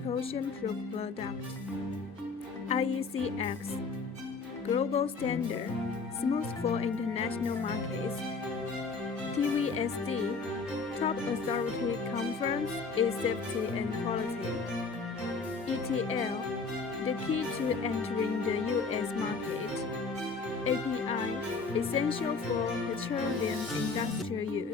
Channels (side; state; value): right; quieter; 4.5 dB